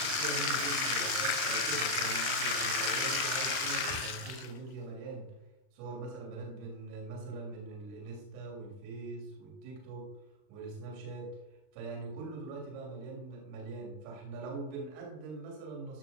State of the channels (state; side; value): late; left; 39 ms